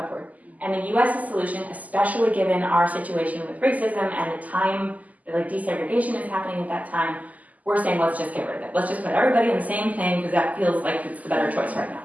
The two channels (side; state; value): left; late; 0.077 ms